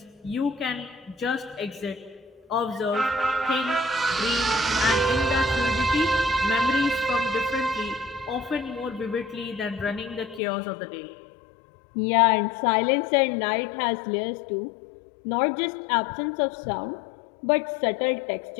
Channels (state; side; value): drops out; right; at 10.4 s